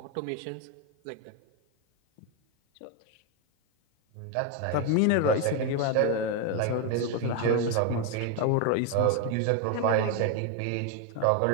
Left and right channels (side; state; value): both; different; correlation 0.01